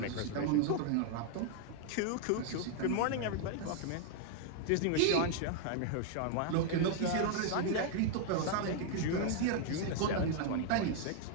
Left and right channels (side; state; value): both; different; correlation 0.00